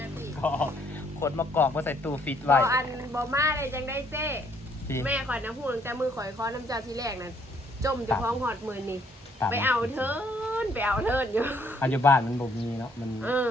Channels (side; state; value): both; normal; correlation 0.66